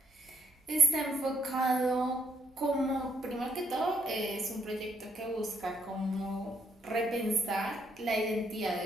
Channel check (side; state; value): both; normal; correlation 0.71